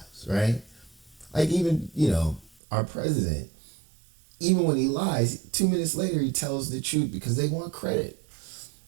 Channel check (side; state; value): left; drops out; at 2.6 s